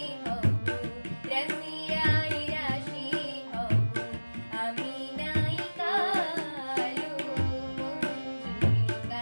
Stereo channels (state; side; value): inverted; both; correlation -1.00